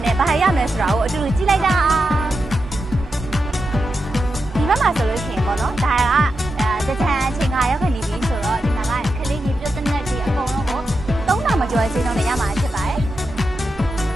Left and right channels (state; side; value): normal; both; correlation 0.88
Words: နဲ့ဘာရမလဲဆိုတာကိုအတူတူကြည့်လိုက်တာဒီဘက်မှာဆိုလို့ရှိရင်ပေါ့နော်ဒါကတကြံအချိန်ကရောက်ခဏနေပြီဆိုတော့ဒီမှာကခလေးကြီးပြုတ်တဲ့နဲ့ဒီအကုန်လုံးကို3000မကျော်ချင်းတော့လည်းရမှာဖြစ်ပါတယ်